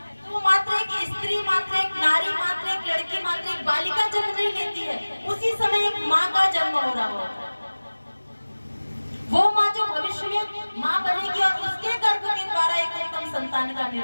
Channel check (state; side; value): inverted; both; correlation -1.00